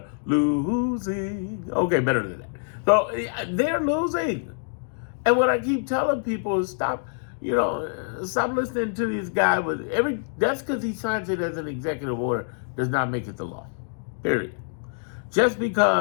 Losing. Okay, better than that. So they're losing. And what I keep telling people is stop listening to this guy that's because he signs it as an executive order does not make it the law. Period. Just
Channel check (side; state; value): right; silent; digital silence